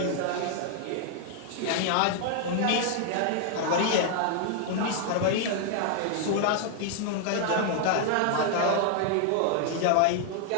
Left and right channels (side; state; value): both; different; correlation 0.00